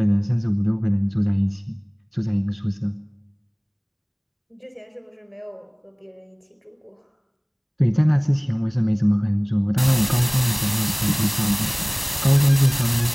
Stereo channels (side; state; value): both; identical; correlation 1.00